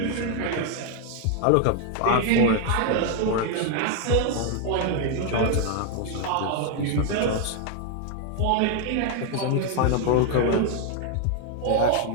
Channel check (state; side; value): different; both; correlation 0.01